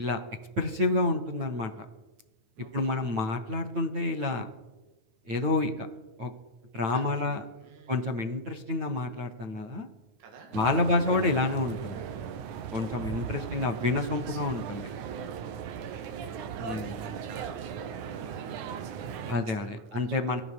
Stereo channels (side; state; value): left; late; 9.4 ms